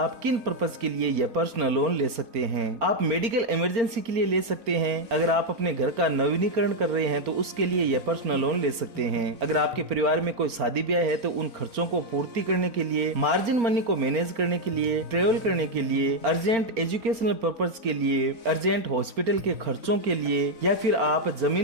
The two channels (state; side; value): late; left; 4.4 ms